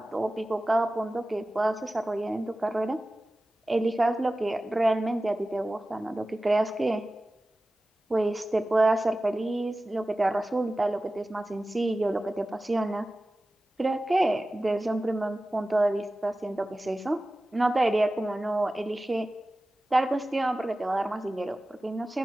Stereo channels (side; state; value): both; normal; correlation 0.96